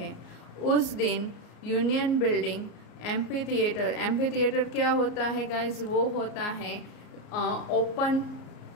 उस दिन यूनियन बिल्डिंग एम्फीथिएटर क्या होता है गाइज? वो होता है ओपन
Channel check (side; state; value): right; late; 33 ms